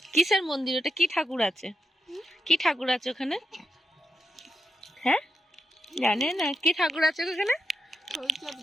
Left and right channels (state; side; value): normal; both; correlation 0.86